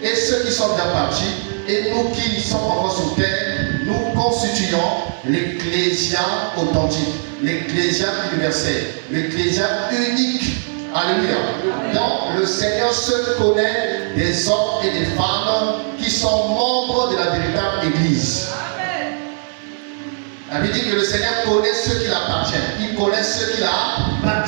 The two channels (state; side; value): silent; left; 60 dB below the other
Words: Et ceux qui sont déjà partis, et nous qui sommes encore sur terre, nous constituons l'ecclésia authentique, l'ecclésia universelle, l'ecclésia unique. Alléluia. Donc le Seigneur se connaît des hommes et des femmes qui sont membres de la véritable Église. La Bible dit que le Seigneur connaît ceux qui l'appartiennent. Il connaît ceux qui